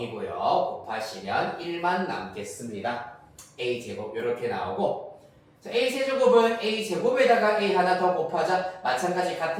곱하시면 1만 남겠습니다. A 제곱 요렇게 나오고, 자, A 세제곱은 A 제곱에다가 A 하나 더 곱하자. 마찬가지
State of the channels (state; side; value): identical; both; correlation 1.00